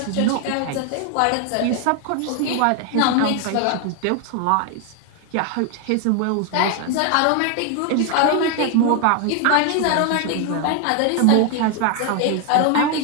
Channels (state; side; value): different; both; correlation 0.00